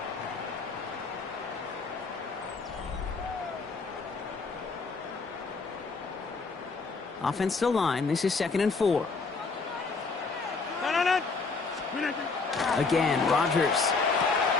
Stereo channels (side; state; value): right; quieter; 4.3 dB